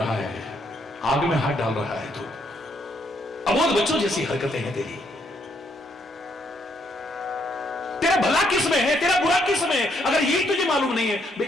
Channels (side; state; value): both; normal; correlation 0.73